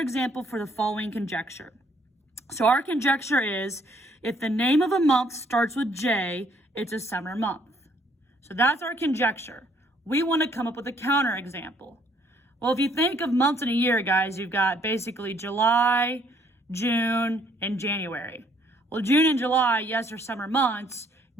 for the following conjecture. So our conjecture is, if the name of a month starts with J, it's a summer month. So that's our conjecture. We want to come up with a counterexample. Well, if you think of months in a year, guys, you've got basically July, June, and January. Well, June and July, yes, are summer months.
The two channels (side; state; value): both; normal; correlation 0.65